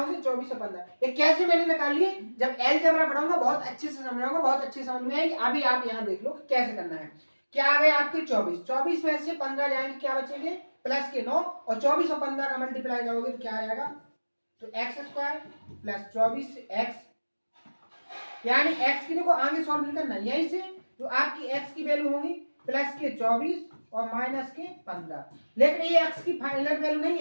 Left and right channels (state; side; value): inverted; both; correlation -1.00